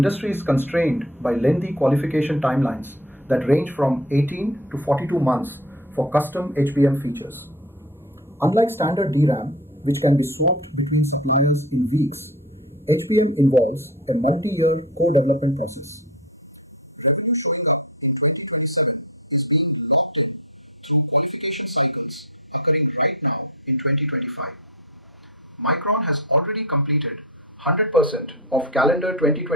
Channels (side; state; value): both; normal; correlation 0.31